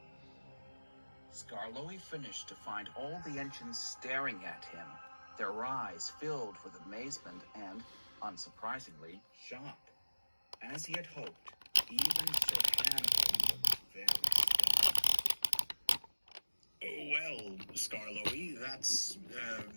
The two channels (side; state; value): both; inverted; correlation -1.00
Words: Skarloey finished to find all the engines staring at him, their eyes filled with amazement and, unsurprisingly, shock. As he had hoped, even Sir Hannibal looked very stunned. Well, Skarloey, that's,